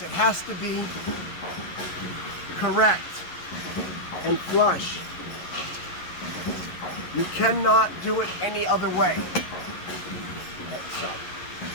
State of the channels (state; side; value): late; right; 11 ms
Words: it has to be correct and flush. You cannot do it any other way.